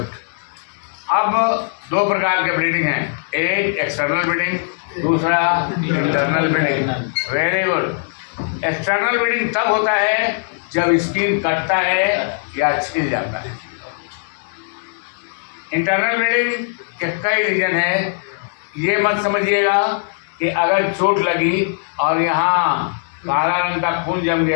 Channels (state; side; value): silent; right; digital silence